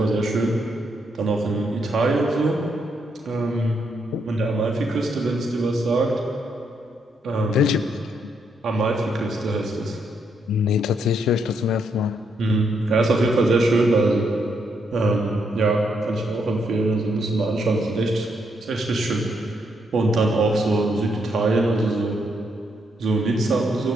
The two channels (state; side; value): normal; both; correlation 0.76